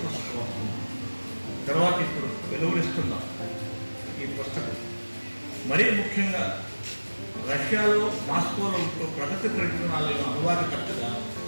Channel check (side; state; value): both; inverted; correlation -1.00